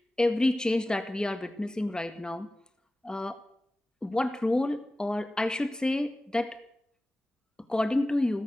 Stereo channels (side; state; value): both; normal; correlation 0.96